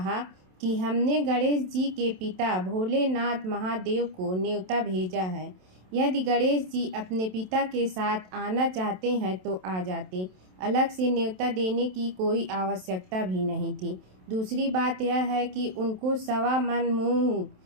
कि हमने गणेश जी के पिता भोलेनाथ महादेव को न्योता भेजा है। यदि गणेश जी अपने पिता के साथ आना चाहते हैं तो आ जाते। अलग से न्योता देने की कोई आवश्यकता भी नहीं थी। दूसरी बात यह है कि उनको 1.25 मन मूंग,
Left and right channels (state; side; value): late; left; 27 ms